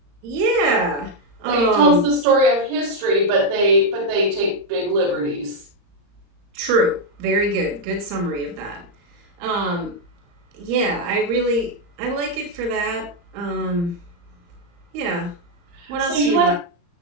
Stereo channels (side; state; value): left; late; 35 ms